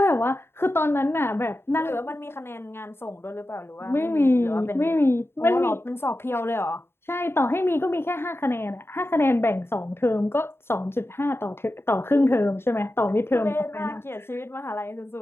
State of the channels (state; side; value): late; right; 0.11 ms